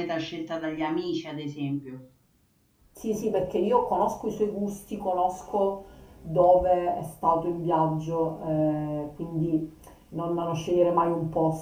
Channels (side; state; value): both; identical; correlation 1.00